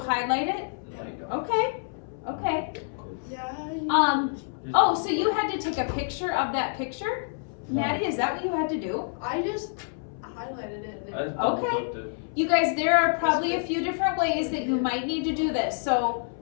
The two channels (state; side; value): silent; right; 60 dB below the other